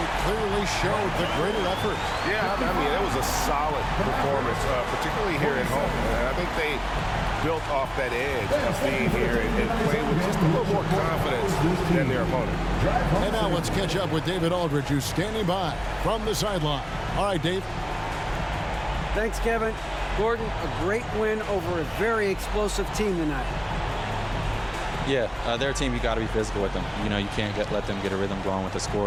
clearly showed the greater effort. Yeah, I mean, it was a solid performance, particularly here at home. And I think they built off that edge of being here and played with just a little more confidence than their opponent. And now let's catch up with David Aldridge, who's standing by from the sideline. All right, Dave. Thanks, Kevin. Gordon, a great win over a very explosive team tonight. Yeah, their team, you got to be physical with them. You know, you can't let them get a rhythm going with the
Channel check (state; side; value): identical; both; correlation 1.00